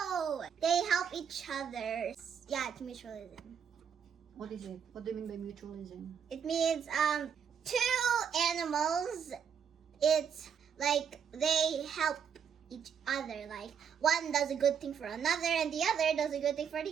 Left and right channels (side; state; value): left; quieter; 7.5 dB